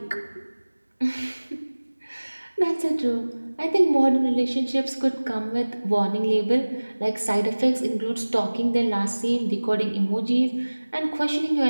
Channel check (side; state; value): both; inverted; correlation -1.00